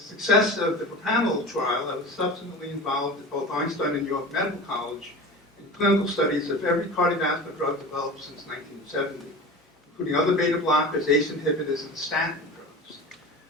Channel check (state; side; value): normal; both; correlation 0.33